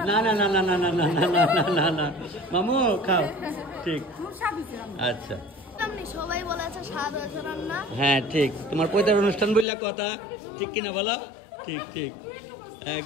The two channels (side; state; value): right; drops out; at 9.7 s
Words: না না না না না না না না না না না মামু খাও ঠিক আচ্ছা। সবাই বলেছে স্বাদ হয়েছে রান্না। হ্যাঁ ঠিক, তোমার পৈতার অনুষ্ঠান বললা কথা ঠিক কিনা বলো? ঠিক ঠিক